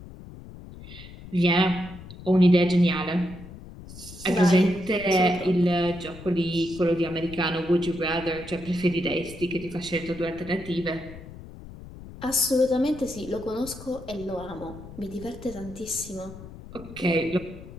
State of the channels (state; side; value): noise; left; rumble, 15 dB below the sound